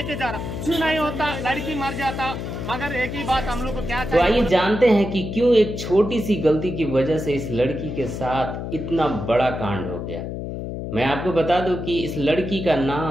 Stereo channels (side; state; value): left; noise; hum, 6 dB below the sound